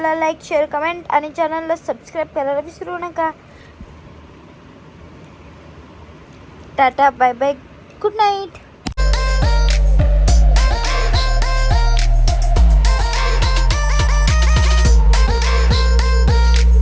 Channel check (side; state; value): both; identical; correlation 1.00